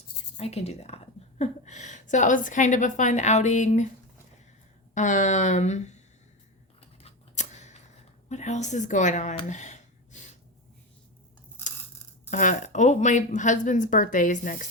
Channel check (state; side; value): normal; both; correlation 0.19